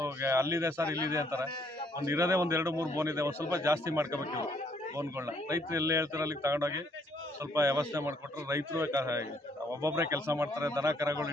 ಅಲ್ಲಿದೆ ಸರ್ ಇಲ್ಲಿದೆ ಅಂತಾರೆ. ಒಂದು ಇರೋದೇ 1-2-3 ಬೋನ್ ಇದೆ. ಒಂದು ಸ್ವಲ್ಪ ಜಾಸ್ತಿ ಮಾಡ್ಕೋಬೇಕು ಇವು ಬೋನ್ಗಳನ್ನ. ರೈತರು ಎಲ್ಲಿ ಹೇಳ್ತಾರೆ ಅಲ್ಲಿಗೆ ತಗೊಂಡೋಗಿ ಸ್ವಲ್ಪ ವ್ಯವಸ್ಥೆ ಮಾಡಿಕೊಟ್ರೆ ರೈತರು ಒಬ್ಬೊಬ್ಬರೇ ಕೆಲಸ ಮಾಡ್ತಾರೆ. ದನ ಕರಗಳು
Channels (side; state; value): both; normal; correlation 0.67